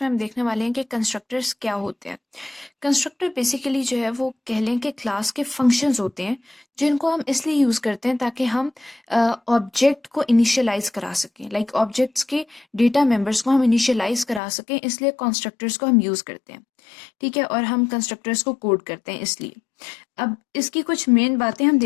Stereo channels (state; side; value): drops out; right; at 14.4 s